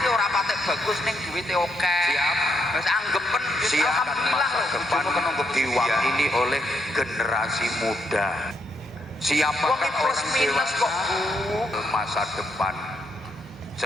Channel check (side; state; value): both; normal; correlation 0.76